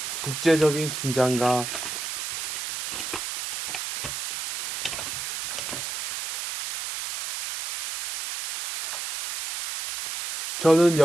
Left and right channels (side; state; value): right; noise; hiss, 4 dB below the sound